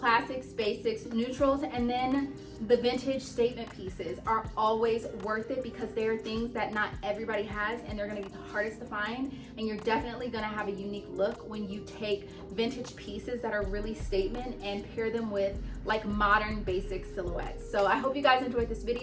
basics, neutrals, and then the vintage statement pieces are always worth it because they are things that not everybody has and they're gonna be the hardest to find, and you're definitely gonna have a unique look when you take vintage pieces that are really statement and pair them with like modern basic silhouettes. So I hope you guys enjoyed this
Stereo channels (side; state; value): both; identical; correlation 1.00